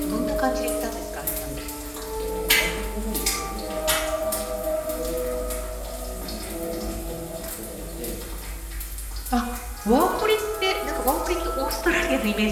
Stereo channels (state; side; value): identical; both; correlation 1.00